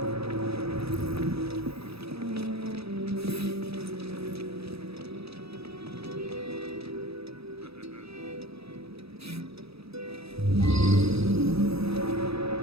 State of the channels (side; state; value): left; late; 0.78 ms